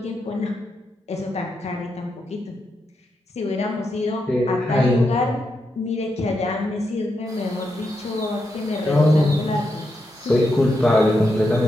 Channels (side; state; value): both; normal; correlation 0.84